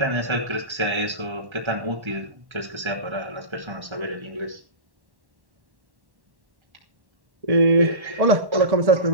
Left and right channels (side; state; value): left; late; 1.1 ms